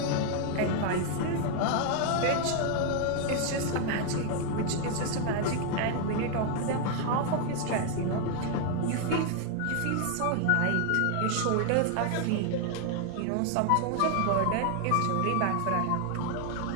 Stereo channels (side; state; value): both; different; correlation 0.00